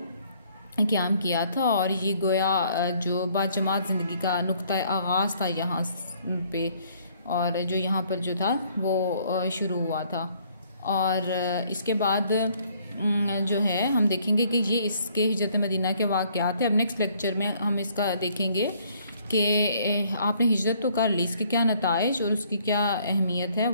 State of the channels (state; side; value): inverted; both; correlation -0.63